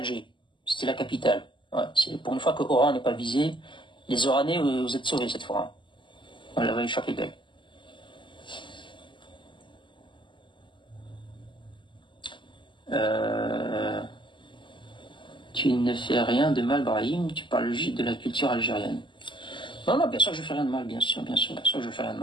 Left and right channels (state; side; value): late; right; 0.24 ms